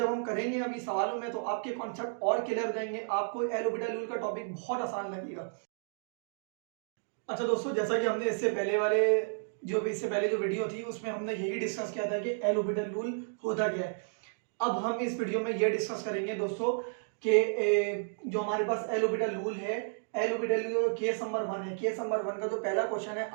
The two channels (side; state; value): left; silent; digital silence